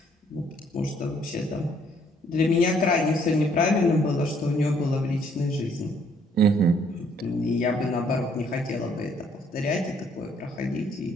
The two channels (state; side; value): normal; both; correlation 0.65